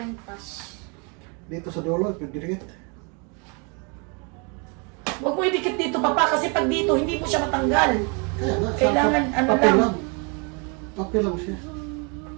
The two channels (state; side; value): quieter; left; 34.0 dB